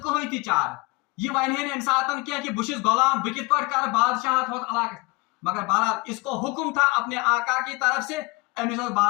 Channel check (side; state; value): right; quieter; 25.4 dB